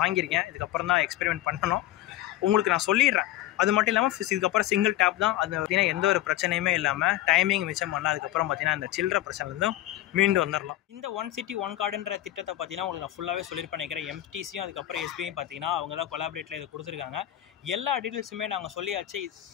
வாங்கியிருக்கேன், இதுக்கப்புறம் தான் எக்ஸ்பெரிமெண்ட் பண்ணணும். உங்களுக்கு நான் சொல்லிடுறேன். அது மட்டும் இல்லாமல் இதுக்கப்புறம் சிங்கிள் டேப் தான். அது பார்த்தீங்கன்னா எந்த ஒரு பிரச்சனையுமே இல்லாமல் டைமிங் மிச்சம் பண்ணலாம். அதுக்கப்புறம் பார்த்தீங்கன்னா இந்த சில்லற பிரச்சனைலேருந்தும் மீண்டு வந்துடலாம். இந்த 1 சிட்டி 1 கார்டுன்ற திட்டத்தை பார்த்தீங்கன்னா உங்களுக்கு நான் ஃபுல்லாகவே சொல்லியிருப்பேன் நினைக்கிறேன். எம்டிசியும் அதுக்கப்புறம் எஸ்பிஐயும் பார்த்தீங்கன்னா அவங்க தான் கொலாபரேட்டில் இதை கொடுத்துருக்காங்க. எல்லா டீட்டெயில்ஸுமே நாங்கள் சொல்லியாச்சு.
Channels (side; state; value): right; quieter; 14.2 dB